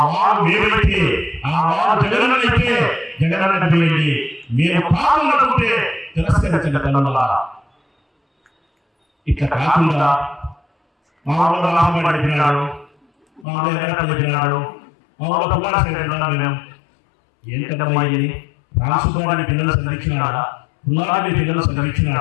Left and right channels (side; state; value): right; drops out; at 13.5 s